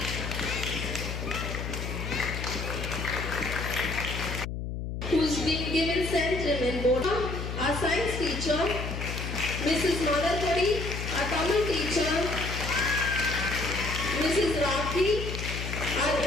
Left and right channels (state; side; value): noise; left; hum, 5 dB below the sound